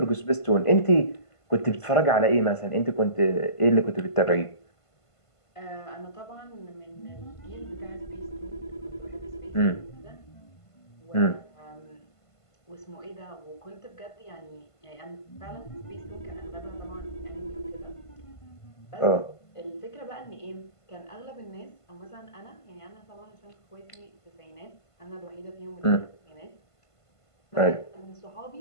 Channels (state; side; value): late; right; 1.5 ms